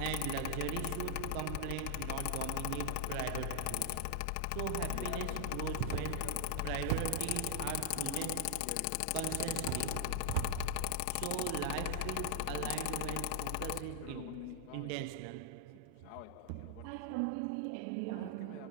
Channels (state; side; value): different; both; correlation 0.00